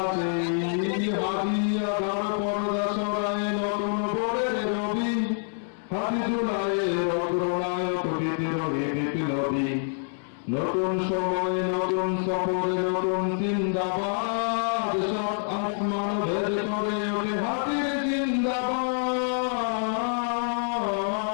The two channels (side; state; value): right; silent; 59 dB below the other